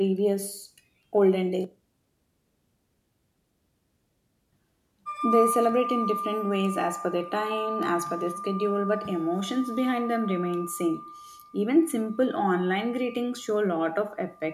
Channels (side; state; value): both; identical; correlation 1.00